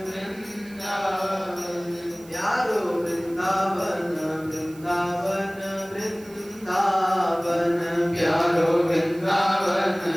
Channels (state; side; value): noise; right; hiss, 23 dB below the sound